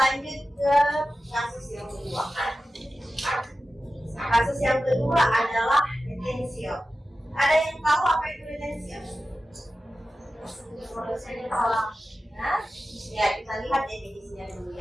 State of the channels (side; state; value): both; normal; correlation 0.94